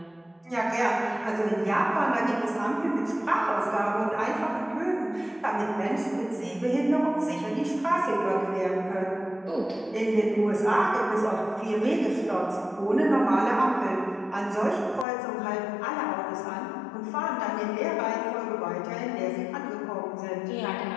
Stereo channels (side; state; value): right; drops out; at 15.1 s